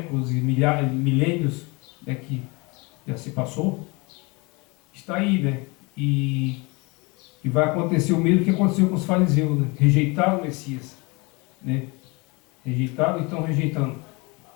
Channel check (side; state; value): right; quieter; 27.2 dB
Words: e milênios, né, que já se passou, está aí, né? E vai acontecer o mesmo que aconteceu com os fariseus, né? Rejeitaram o Messias, né? Rejeitaram e estão rejeitando,